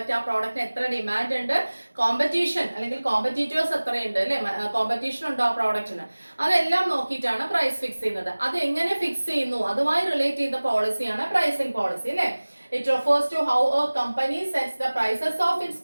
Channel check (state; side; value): inverted; both; correlation -1.00